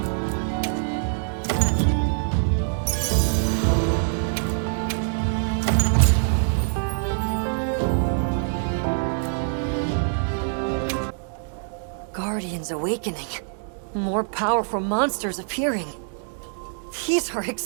Guardians awakening. More powerful monsters appearing. These are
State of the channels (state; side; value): silent; left; digital silence